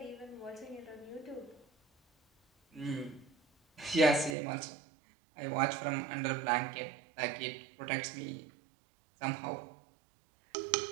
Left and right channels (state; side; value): drops out; left; at 4.4 s